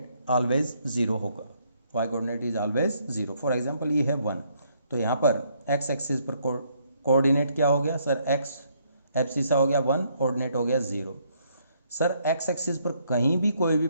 ऑलवेज 0 होगा। y coordinate is always 0। For example ये है 1, तो यहाँ पर x एक्सिस पर कोऑर्डिनेट क्या हो गया सर? x एब्सिसा हो गया 1, कोऑर्डिनेट हो गया 0। सर x एक्सिस पर कहीं भी कोई भी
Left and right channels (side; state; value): both; inverted; correlation -0.70